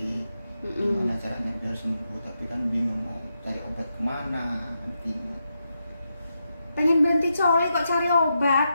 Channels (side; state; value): both; inverted; correlation -0.85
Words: Gimana caranya biar sembuh, tapi kan bingung mau cari obat kemana. Bingung. Pengen berhenti coli kok cari